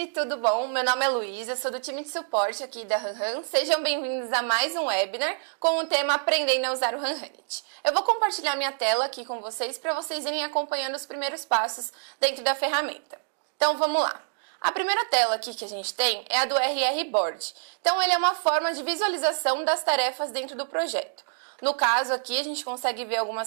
tudo bom? Meu nome é Luísa, sou do time de suporte aqui da HanHan. Sejam bem-vindos a mais um webinar com o tema Aprendendo a usar o HanHanit. Eu vou compartilhar minha tela aqui com vocês para vocês irem acompanhando os primeiros passos dentro da ferramenta. Então, vamos lá. A primeira tela aqui que a gente tem é a do RR Board. Então, ele é uma forma de visualização das tarefas dentro do projeto. No caso aqui, a gente consegue ver algumas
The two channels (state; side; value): silent; left; digital silence